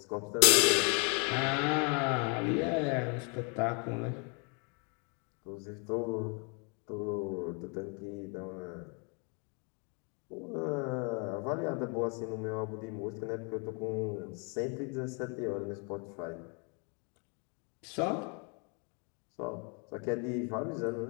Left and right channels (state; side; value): quieter; right; 35.6 dB